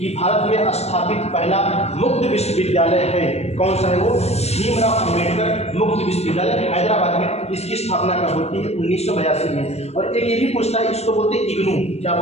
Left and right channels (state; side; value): late; right; 0.31 ms